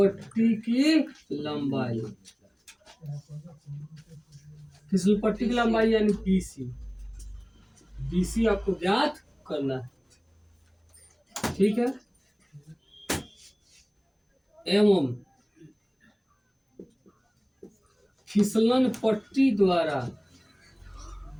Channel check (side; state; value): both; identical; correlation 1.00